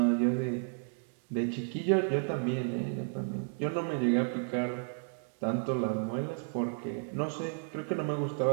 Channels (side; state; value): left; silent; 56 dB below the other